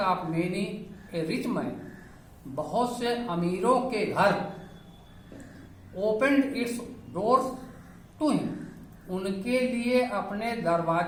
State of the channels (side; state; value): both; identical; correlation 1.00